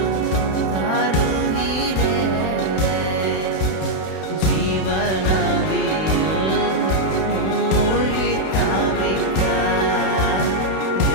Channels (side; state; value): right; late; 31 ms